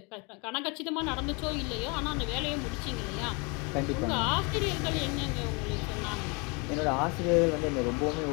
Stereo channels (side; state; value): right; quieter; 30.4 dB